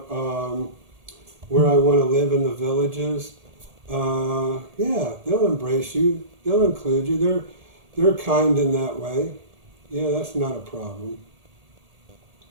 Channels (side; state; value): left; late; 1.8 ms